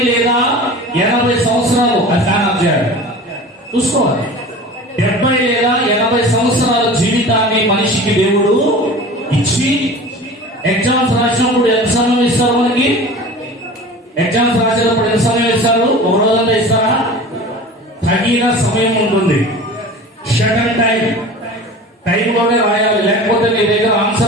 లేదా 80 సంవత్సరాలు చూసుకోవాలి. 70 లేదా 80 సంవత్సరాల జీవితాన్ని మనిషికి దేవుడు ఇచ్చి, ఎగ్జామ్స్ రాసినప్పుడు ఎంత సమయం ఇస్తారు మనకి? ఎగ్జామ్స్ రాసేటప్పుడు ఎంత సమయం ఇస్తారు? ఒక రోజంతా ఇస్తారా? తగిన సమయం ఉంటుంది. షటన్ టైంలోనే రాయాలి, లేకపోతే నీ దగ్గర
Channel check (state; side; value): normal; both; correlation 0.37